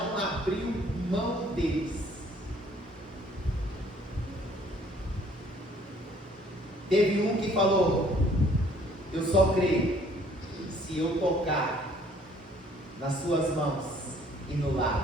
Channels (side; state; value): both; normal; correlation 0.59